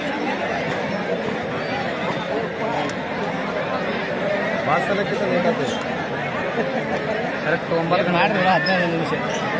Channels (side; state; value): both; identical; correlation 1.00